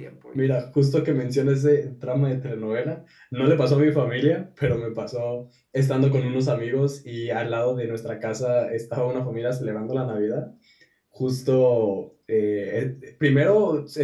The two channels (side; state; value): both; identical; correlation 1.00